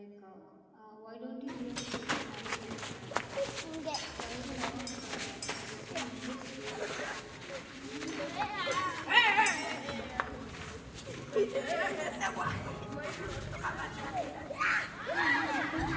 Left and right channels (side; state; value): both; identical; correlation 1.00